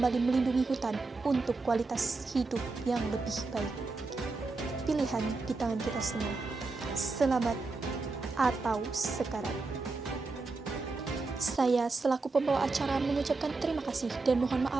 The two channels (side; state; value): left; quieter; 3.7 dB